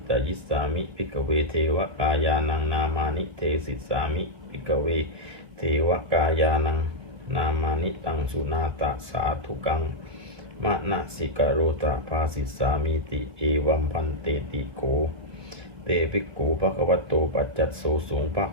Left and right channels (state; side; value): late; left; 1.7 ms